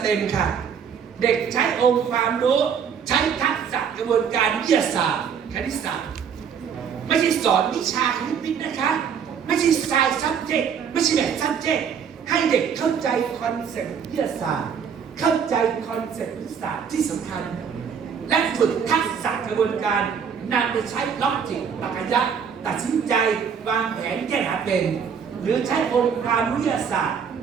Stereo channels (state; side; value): quieter; left; 7.2 dB